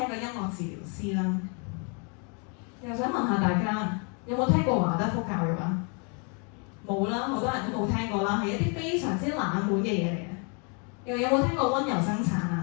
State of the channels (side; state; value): right; quieter; 36.7 dB